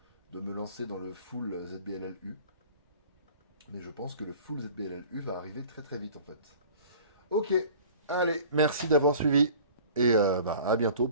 me lancer dans le full ZBLLU. Mais je pense que le full ZBLLU va arriver très très vite en fait. Ok, allez, merci d'avoir suivi. Et à bientôt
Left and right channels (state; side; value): inverted; both; correlation -0.46